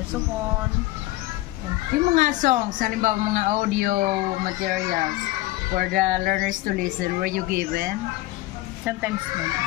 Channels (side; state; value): right; quieter; 18.3 dB